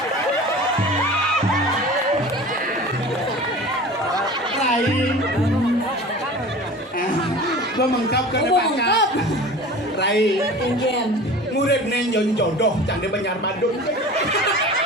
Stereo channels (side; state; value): both; normal; correlation 0.38